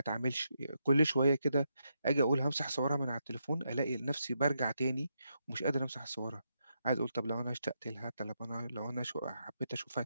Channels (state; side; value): inverted; both; correlation -0.82